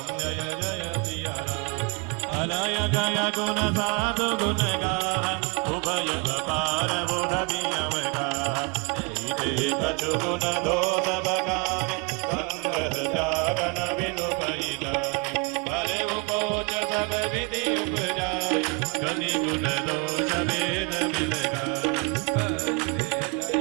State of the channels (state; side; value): quieter; left; 30.6 dB